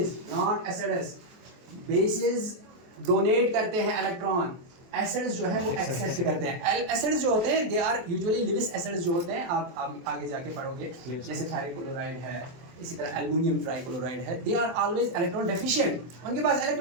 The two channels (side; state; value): left; late; 23 ms